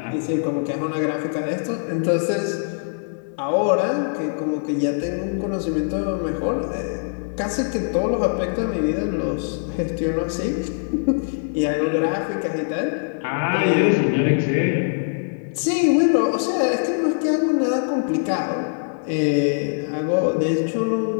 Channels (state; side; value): silent; right; digital silence